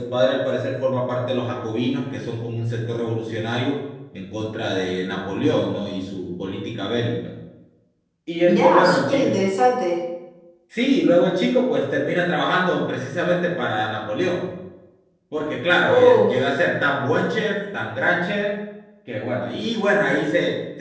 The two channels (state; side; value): identical; both; correlation 1.00